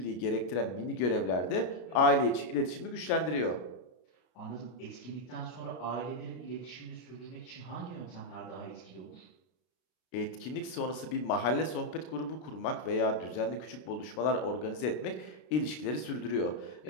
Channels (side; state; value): right; late; 33 ms